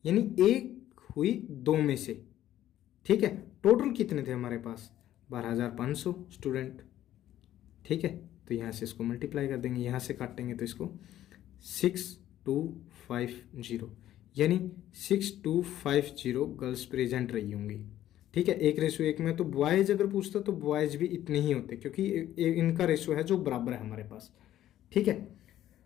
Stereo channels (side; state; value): right; quieter; 12.7 dB